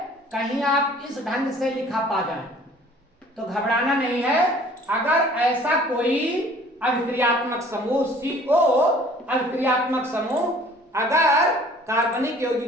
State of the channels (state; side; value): normal; both; correlation 0.52